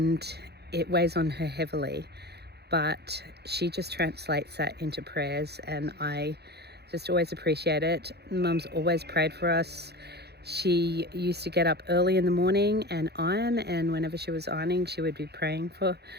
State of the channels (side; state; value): left; late; 0.48 ms